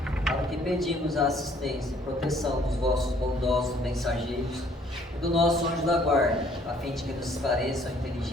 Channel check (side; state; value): both; normal; correlation 0.61